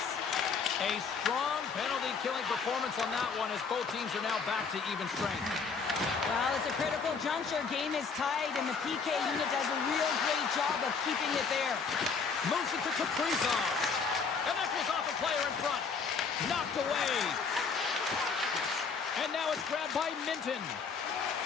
A strong penalty-killing performance on that one as both teams are now back to even strength. Well, it's a critical juncture. Game is tied, and the PK unit does a real great job of keeping it there. Moves it to Kaprizov. And that goes off a player in front. Knocked away. And now it's grabbed by Minton.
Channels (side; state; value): right; quieter; 5.4 dB